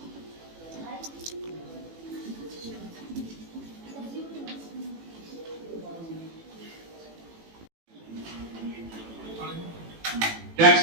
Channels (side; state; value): left; late; 18 ms